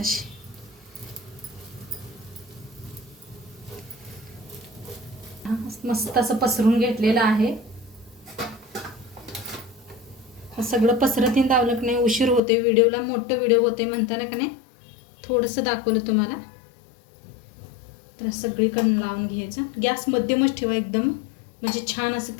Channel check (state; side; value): drops out; right; at 12.4 s